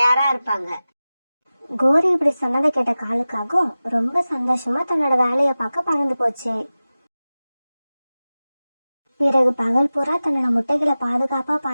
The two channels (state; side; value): inverted; both; correlation -0.96